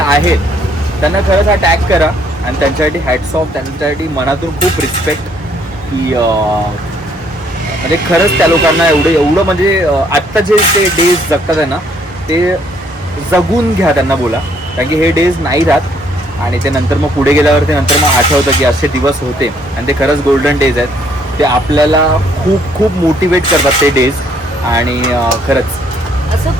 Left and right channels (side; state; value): both; normal; correlation 0.66